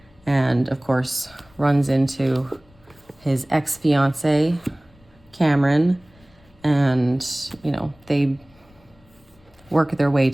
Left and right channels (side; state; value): left; noise; rumble, 29 dB below the sound